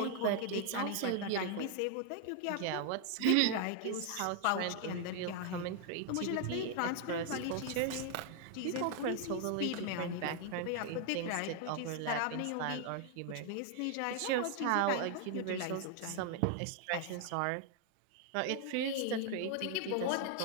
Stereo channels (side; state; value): both; different; correlation 0.00